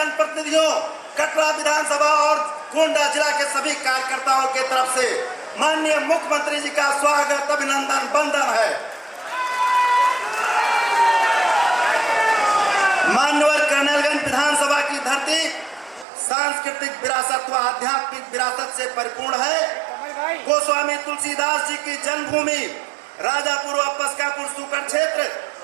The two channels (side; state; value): left; drops out; at 16.1 s